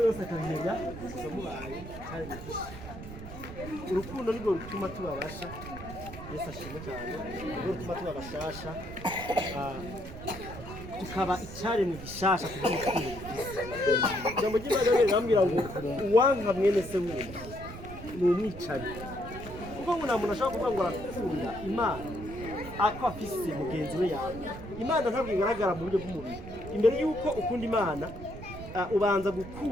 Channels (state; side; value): noise; right; rumble, 12 dB below the sound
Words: yose akamenya gusa mubaye cyane gifishe urukundo nirwo rutuma tubabasha Yesu ashimwe cyane nirwo rutuma tubabashasha tukaba icyaremwe gishasha kugira urukundo rufise ijambo ry'Imana rirambwira ngo uwanka mwene se wumva ni umwicanyi kuko ngo nta muntu ashobora kuvuga ngo arakunda Imana ako afise mugenzi we yawe Imana ntabwo igaragara mu buryo bw'umubiri imbere yuko ukunda Imana ubanza